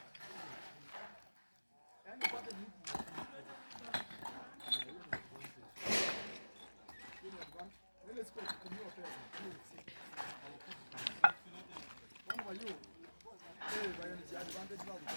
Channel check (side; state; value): both; inverted; correlation -1.00